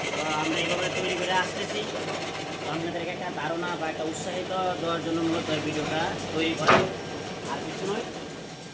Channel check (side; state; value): both; identical; correlation 1.00